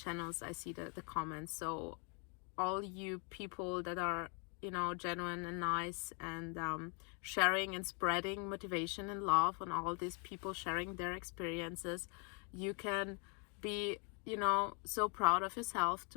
I see the comments. So all you people that are, you know, genuine and nice, and sharing and spreading motivation and love on all these people sharing their experiences, you can be, you know, so proud of yourself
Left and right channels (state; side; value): quieter; right; 37.3 dB